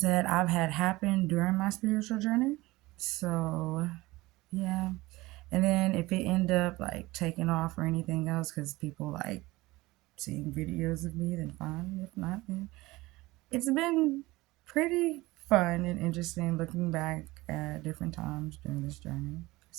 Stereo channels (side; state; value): left; quieter; 20.3 dB